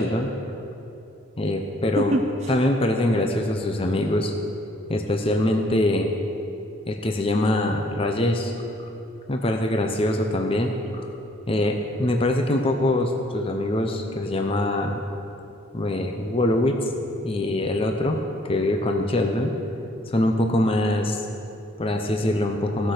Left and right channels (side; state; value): both; normal; correlation 0.63